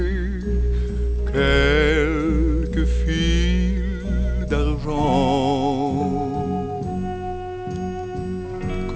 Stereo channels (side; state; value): both; identical; correlation 1.00